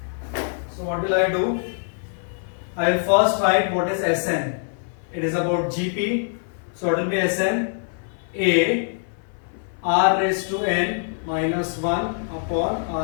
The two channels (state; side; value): silent; right; 59 dB below the other